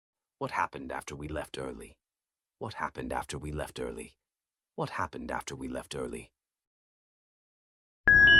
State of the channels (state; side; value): normal; both; correlation 0.89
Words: What happened after we left early? What happened after we left early? What happened after we left early?